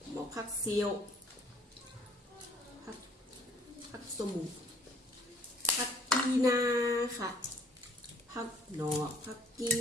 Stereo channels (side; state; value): both; normal; correlation 0.58